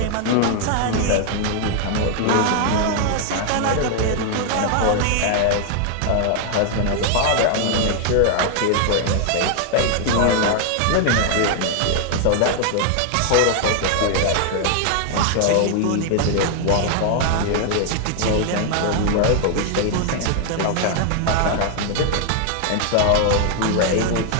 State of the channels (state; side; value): different; both; correlation 0.00